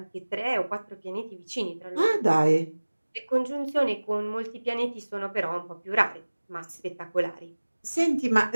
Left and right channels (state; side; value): inverted; both; correlation -1.00